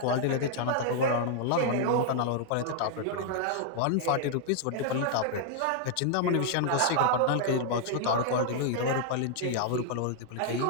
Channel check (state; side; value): different; both; correlation 0.00